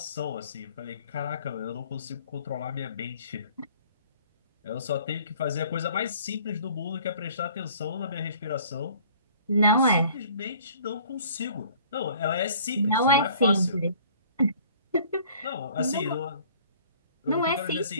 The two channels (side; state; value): both; inverted; correlation -0.53